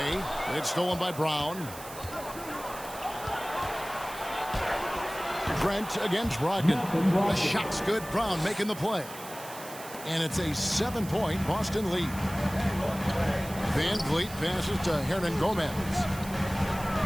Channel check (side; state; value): right; noise; hiss, 14 dB below the sound